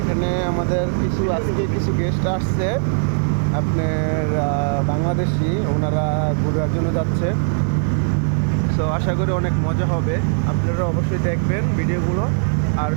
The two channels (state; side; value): silent; left; 57 dB below the other